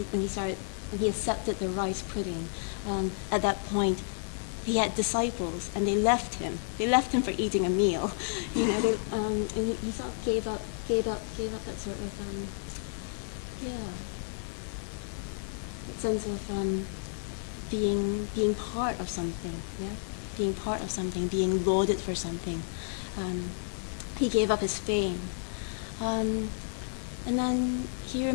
when he accepted the rice pudding. At that point, he had disciples, and they left him. They left him for eating a meal, and he sort of gave up that sort of that sense of being part of something, being lauded for something. He gave up his fame. And then he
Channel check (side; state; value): right; silent; digital silence